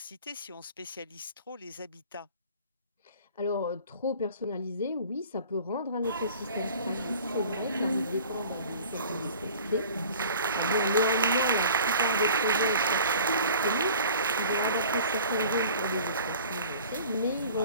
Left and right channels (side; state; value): both; inverted; correlation -0.46